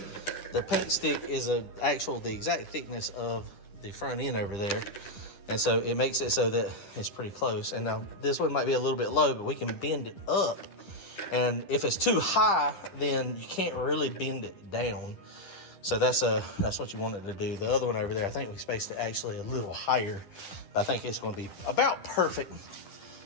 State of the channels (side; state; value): right; late; 10 ms